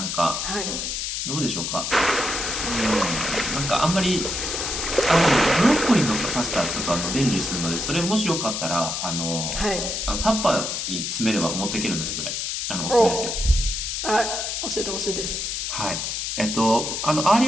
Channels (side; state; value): left; noise; hiss, 2 dB below the sound